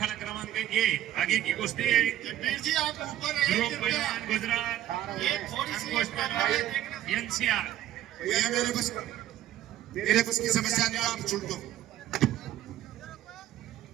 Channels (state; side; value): quieter; left; 12.9 dB